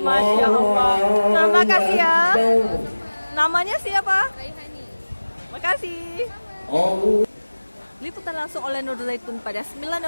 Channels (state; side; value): inverted; both; correlation -1.00